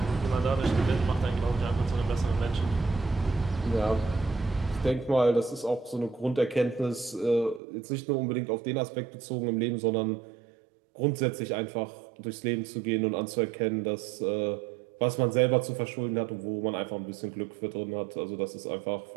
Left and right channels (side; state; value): left; drops out; at 7.6 s